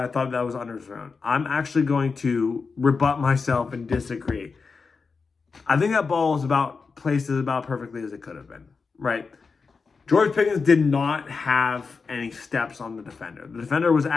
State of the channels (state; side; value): quieter; right; 4.8 dB